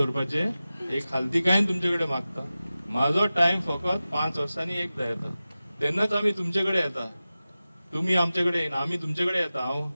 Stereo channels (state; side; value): inverted; both; correlation -0.95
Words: एक खालतीकायेन तुमचे कडेन मागता, म्हाजो टायम फकत 5 वर्सांनी एकदा येता, तेन्नाच आमी तुमचे कडेन येता. तुम्ही आमचे कडेन येना, आमी तुमचे कडेन येता. हांव